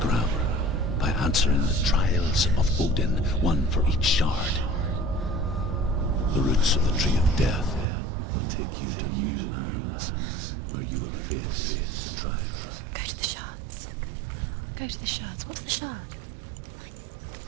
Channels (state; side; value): drops out; left; at 7.9 s